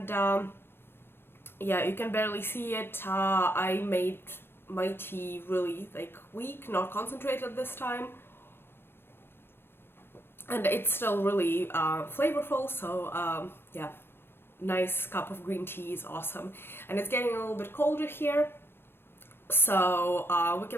yeah, you can barely see it. I made my tea really weak, not concentrated this time, and it's still really flavorful. So yeah, nice cup of green tea is awesome, and it's getting a little bit colder here. So we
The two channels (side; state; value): right; late; 0.11 ms